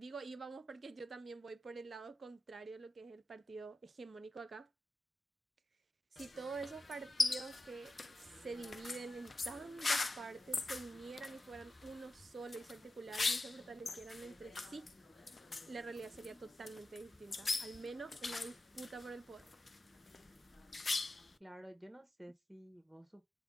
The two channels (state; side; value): normal; both; correlation 0.92